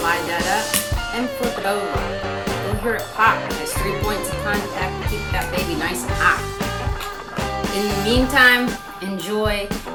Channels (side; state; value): both; identical; correlation 1.00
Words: that up and flip it over. You'll hear it pop. It has 3 points of contact to keep that baby nice and hot. In the meantime, enjoy.